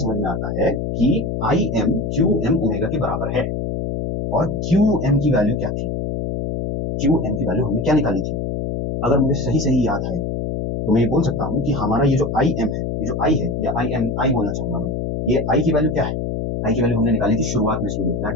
में आता है कि I M Q M omega के बराबर है। और क्यू एम की वैल्यू क्या थी, क्यू एम की वैल्यू हमने क्या निकाली थी, अगर मुझे सही सही याद है तो मैं ये बोल सकता हूँ कि हमारा ये जो आई एम है, ये जो आई है, या आई एम आई बोलना चाहूंगा मैं, ये आई की वैल्यू क्या है, आई की वैल्यू हमने निकाली थी शुरुआत में student, that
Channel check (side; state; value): left; noise; hum, 2 dB below the sound